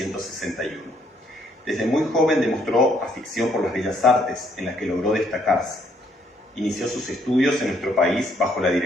Desde muy joven demostró afición por las bellas artes, en las que logró destacarse. Inició sus estudios en nuestro país bajo la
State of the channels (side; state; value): both; normal; correlation 0.68